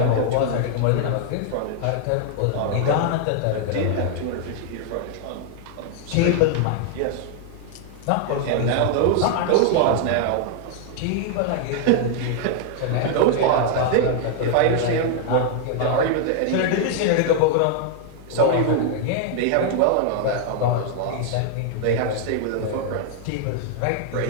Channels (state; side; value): different; both; correlation 0.00